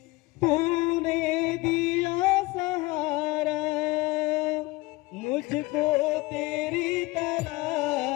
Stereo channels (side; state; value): right; quieter; 22.0 dB